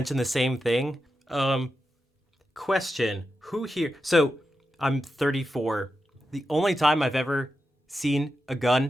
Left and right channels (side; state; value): both; normal; correlation 0.89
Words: the same thing. Question: Who here? So I'm 34. The only time I've ever seen a